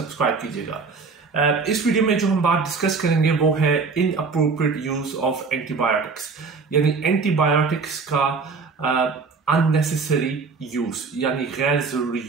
कीजिएगा। इस वीडियो में जो हम बात डिस्कस करेंगे वो है इनअप्रोप्रिएट यूज ऑफ एंटीबायोटिक्स, यानी एंटीबायोटिक्स का अननेसेसरी यूज, यानी गैर जरूरी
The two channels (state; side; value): quieter; left; 4.7 dB